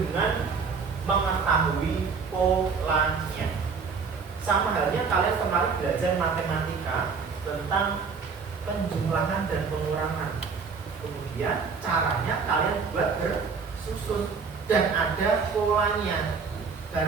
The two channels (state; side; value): quieter; left; 5.3 dB